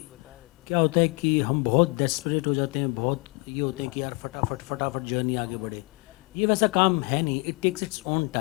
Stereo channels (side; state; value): right; quieter; 29.9 dB